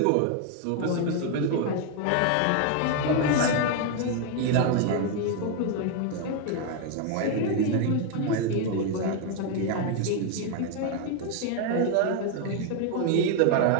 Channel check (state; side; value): different; both; correlation 0.01